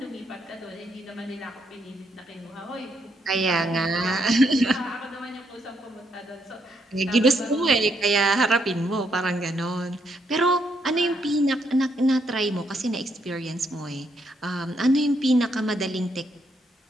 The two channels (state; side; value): normal; both; correlation 0.75